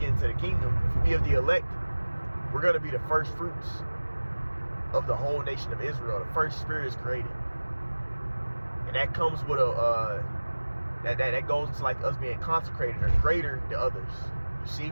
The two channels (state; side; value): inverted; both; correlation -1.00